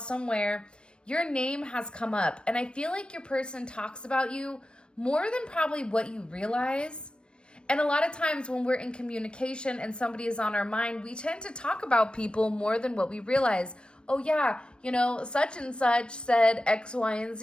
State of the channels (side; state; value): right; late; 0.055 ms